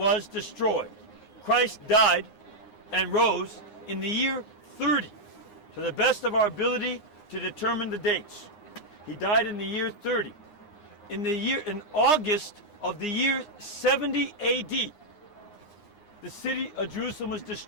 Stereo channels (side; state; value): right; late; 9.6 ms